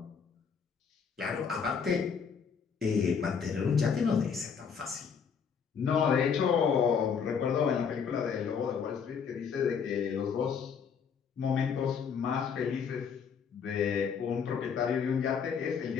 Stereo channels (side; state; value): right; quieter; 6.6 dB